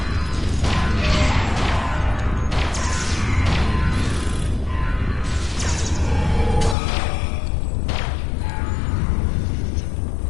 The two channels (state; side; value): drops out; right; at 6.8 s